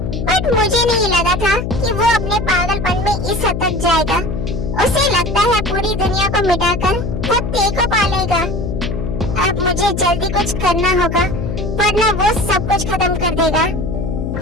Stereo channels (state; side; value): noise; left; hum, 4 dB below the sound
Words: बट मुझे नहीं लगा था कि वो अपने पागलपन में इस हद तक जाएगा। उसे लगता है पूरी दुनिया को मिटाकर वो टी को पालेगा। अब मुझे जल्दी कुछ करना होगा, वरना वो सब कुछ खत्म कर देगा।